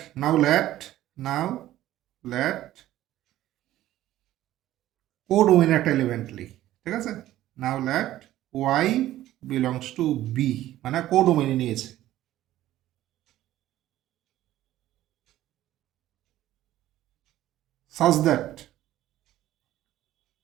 নাও লেট কোডোমেইন একটা এলিমেন্ট লিখ। ঠিক আছে? Now let y belongs to b, মানে কোডোমেইনে নিয়েছে। such that,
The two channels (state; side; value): quieter; left; 14.2 dB